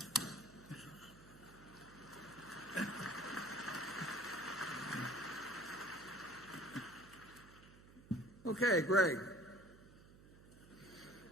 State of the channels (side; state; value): right; noise; hum, 20 dB below the sound